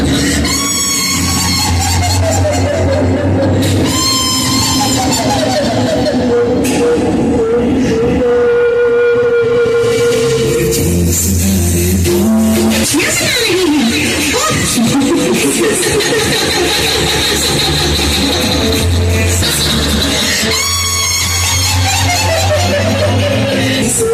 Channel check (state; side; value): identical; both; correlation 1.00